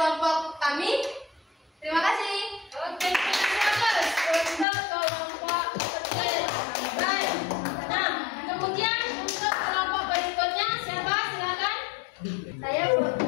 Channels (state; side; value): drops out; right; at 4.7 s